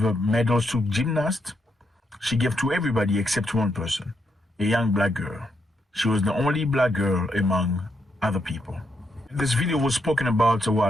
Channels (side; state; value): both; normal; correlation 0.79